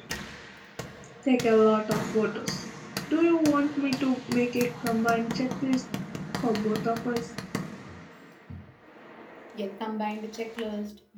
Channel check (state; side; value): identical; both; correlation 1.00